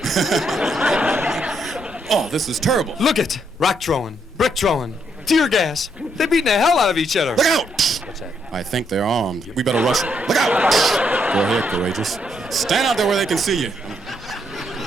Oh, this is terrible. Look it. Rock throwing, brick throwing, tear gas. They're beating the hell out of each other. Look out! What's that? I think they're armed. We better rush them. Look out! Go ahead, courageous. Stand out there where they can see you.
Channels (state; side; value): normal; both; correlation 0.75